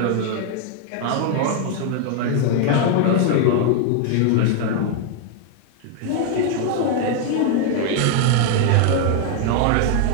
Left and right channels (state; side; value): different; both; correlation 0.00